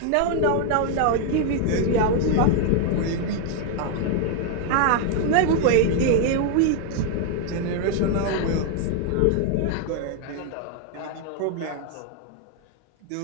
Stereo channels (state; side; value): different; both; correlation 0.00